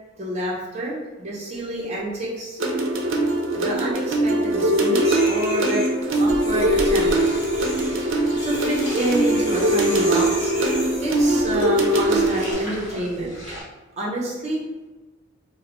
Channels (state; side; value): normal; both; correlation 0.36